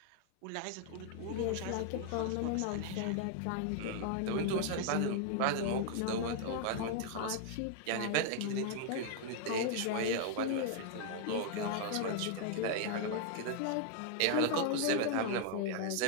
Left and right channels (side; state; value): both; different; correlation 0.00